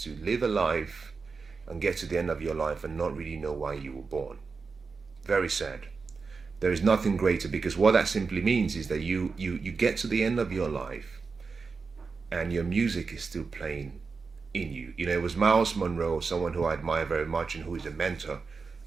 to live a life and get to the end of your life and not really know why you were born. Very sad. There is nothing greater, because what that simply means is that you get to the end of your life and your music is still playing in you. You know, it was Miles Monroe, someone who I admire very much and who is a mentor,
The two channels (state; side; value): quieter; left; 4.8 dB